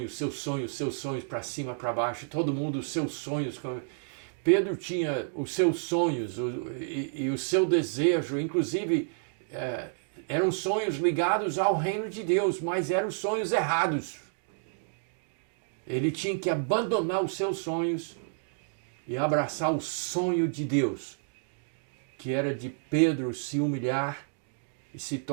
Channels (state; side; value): silent; left; digital silence